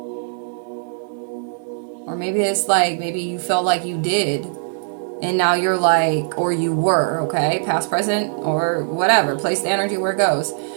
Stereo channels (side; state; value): left; silent; digital silence